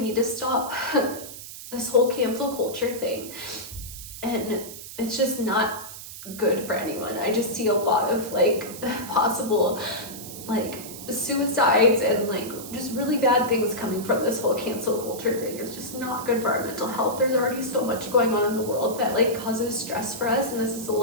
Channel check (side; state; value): right; noise; hiss, 12 dB below the sound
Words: to stop this whole cancel culture thing. And it's just not good for anyone. I just see a lot of like possible like suicides and like just really bad things coming from this whole cancel culture thing. It's just not good for our mental health. There's already so much going on in the world that like causes stress for us, and this is the